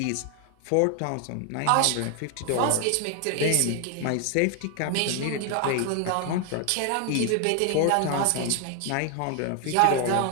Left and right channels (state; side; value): different; both; correlation 0.01